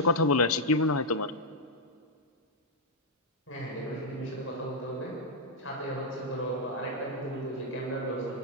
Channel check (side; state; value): both; normal; correlation -0.03